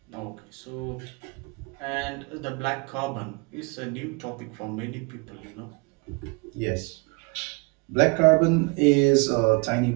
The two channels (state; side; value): quieter; left; 30.7 dB